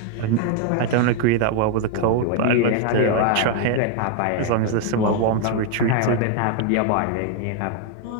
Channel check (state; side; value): different; both; correlation 0.00